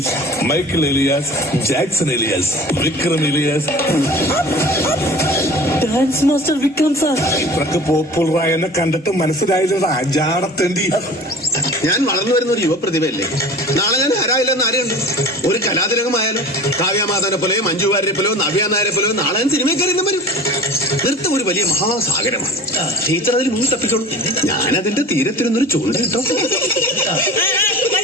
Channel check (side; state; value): both; normal; correlation 0.40